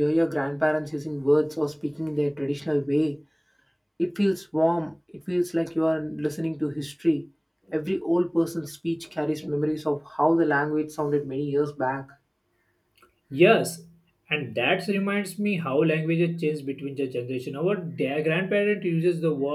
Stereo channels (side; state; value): both; identical; correlation 1.00